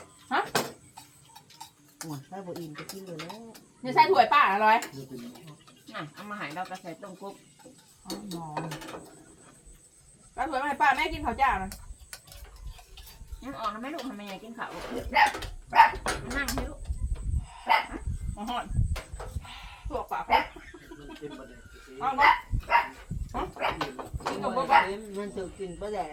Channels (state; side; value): identical; both; correlation 1.00